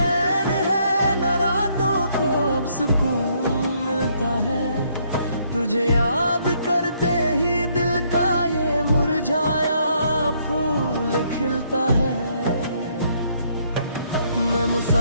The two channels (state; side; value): inverted; both; correlation -0.70